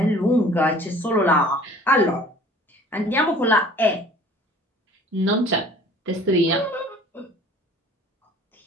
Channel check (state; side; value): normal; both; correlation 0.49